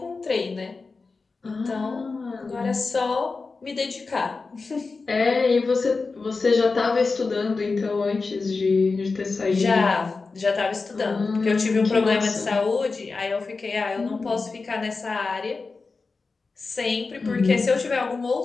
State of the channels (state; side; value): quieter; right; 4.2 dB